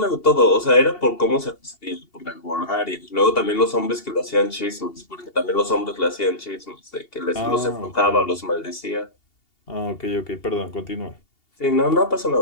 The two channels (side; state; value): right; late; 2.8 ms